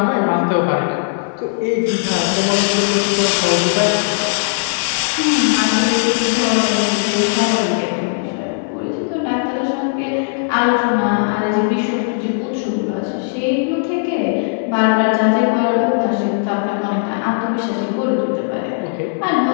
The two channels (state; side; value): silent; right; digital silence